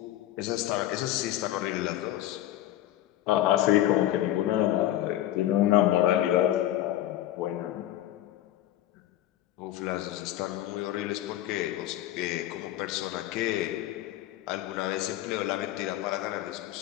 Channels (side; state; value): right; quieter; 13.6 dB